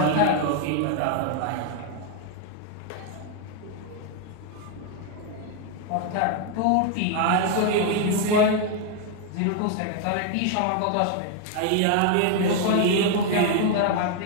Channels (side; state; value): both; different; correlation 0.01